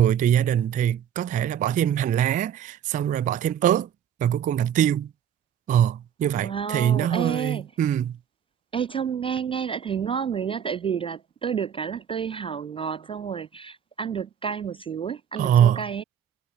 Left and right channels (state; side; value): quieter; left; 9.1 dB